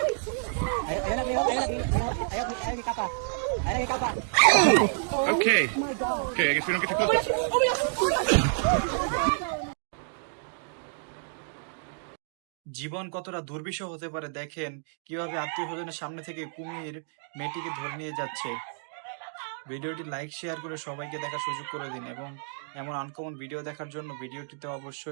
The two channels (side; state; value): left; silent; digital silence